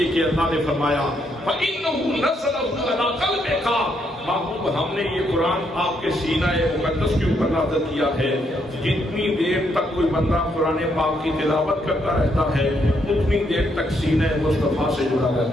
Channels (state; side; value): normal; both; correlation 0.75